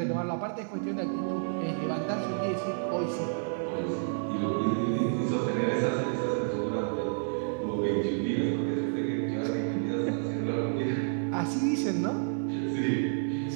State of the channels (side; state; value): left; silent; digital silence